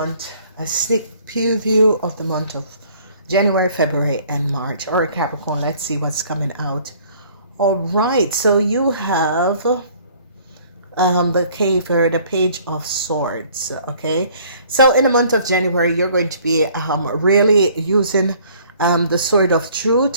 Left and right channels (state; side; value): inverted; both; correlation -0.56